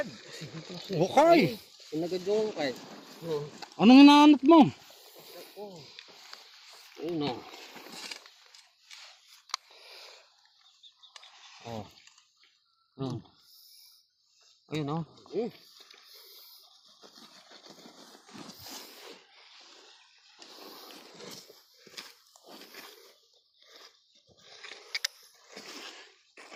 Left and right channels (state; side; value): identical; both; correlation 1.00